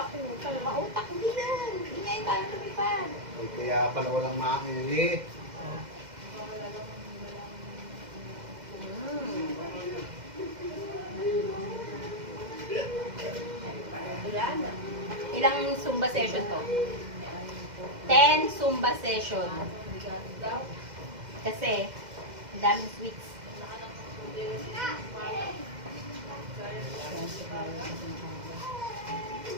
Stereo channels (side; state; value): left; late; 2.1 ms